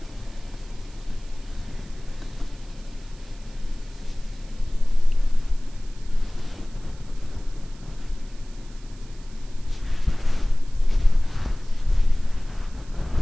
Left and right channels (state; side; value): noise; right; hiss, 25 dB below the sound